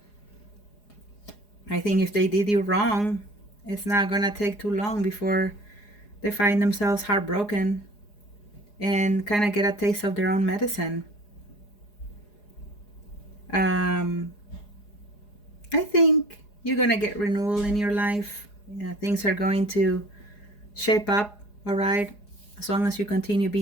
I think if they did you wrong, it's not gonna take too long before they find themselves heartbroken and kind of get a taste of their own medicine. I think you're gonna get renewal in your life. Things are going to shape up, all right? As long as you continue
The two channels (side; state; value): right; late; 4.8 ms